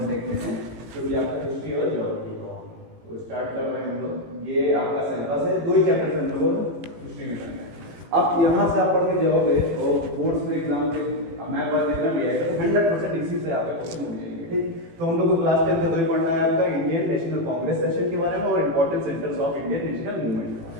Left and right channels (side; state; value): left; late; 18 ms